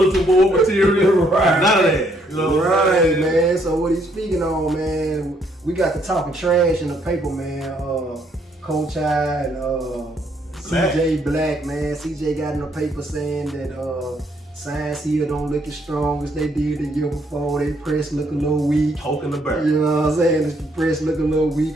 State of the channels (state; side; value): normal; both; correlation 0.70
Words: board material. Right. None of that. You know right, man. So what he's speaking on, man, we got to talking trash in the paper, man. Coach I and CJ Black, man. CJ got in the paper saying that Science Hill don't look as strong as they did the year before. They press look a little weak. Poking the bird. You know what I'm saying? The press look a little